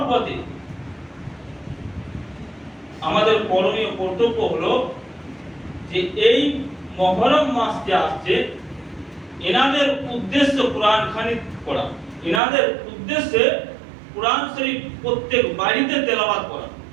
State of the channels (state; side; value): drops out; left; at 12.4 s